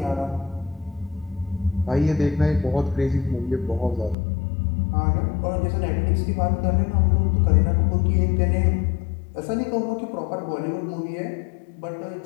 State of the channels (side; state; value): right; drops out; at 4.2 s